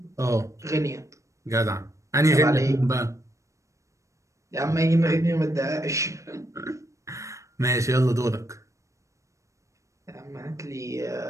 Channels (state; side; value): late; left; 0.15 ms